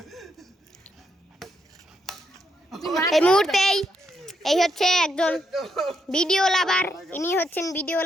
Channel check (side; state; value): both; normal; correlation 0.78